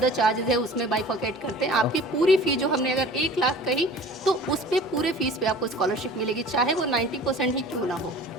चार्जेस है, उसमें बाइफर्केट करते हैं। आपकी पूरी फी जो हमने अगर 1 लाख कही तो उस पे पूरे फीस पे आपको स्कॉलरशिप मिलेगी, चाहे वो 90% ही क्यों ना हो।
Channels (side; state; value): both; normal; correlation 0.44